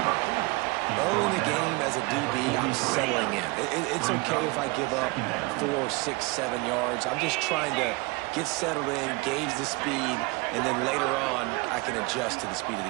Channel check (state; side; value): quieter; left; 25.6 dB